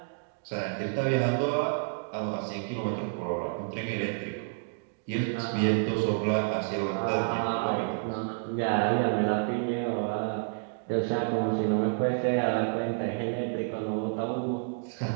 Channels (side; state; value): left; silent; digital silence